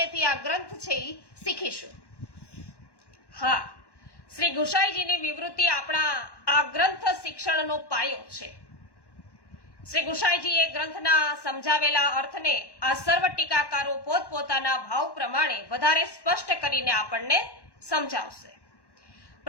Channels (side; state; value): right; late; 1.1 ms